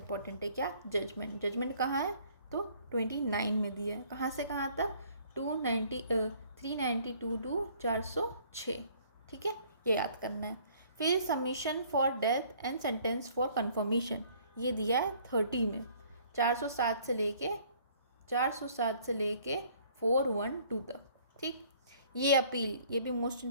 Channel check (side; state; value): both; inverted; correlation -0.58